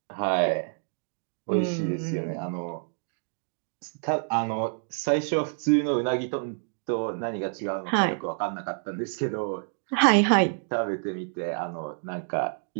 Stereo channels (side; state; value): left; silent; digital silence